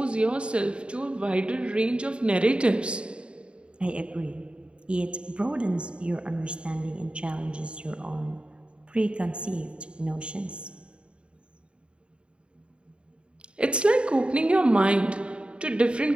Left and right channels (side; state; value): left; late; 0.055 ms